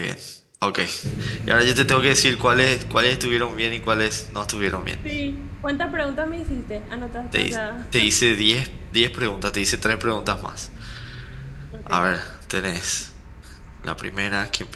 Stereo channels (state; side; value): identical; both; correlation 1.00